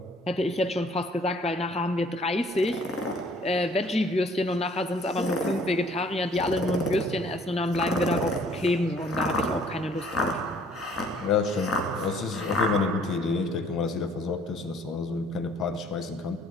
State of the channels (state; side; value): normal; both; correlation 0.58